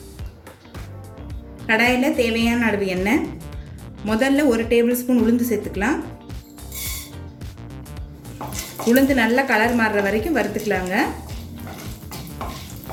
கடாயில் தேவையான அளவு எண்ணெய், முதல்ல 1 டேபிள் ஸ்பூன் உளுந்து சேர்த்துக்கலாம். உளுந்து நல்லா கலர் மாறுற வரைக்கும் வறுத்துக்கலாங்க.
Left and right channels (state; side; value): identical; both; correlation 1.00